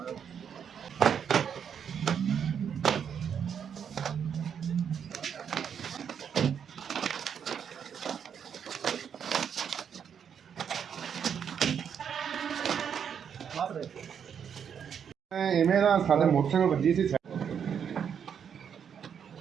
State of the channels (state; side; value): quieter; left; 7.8 dB